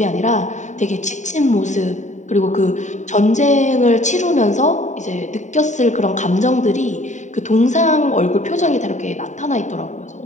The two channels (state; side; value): late; right; 0.35 ms